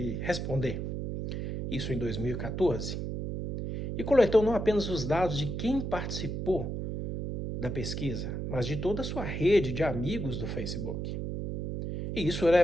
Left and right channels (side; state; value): right; noise; hum, 4 dB below the sound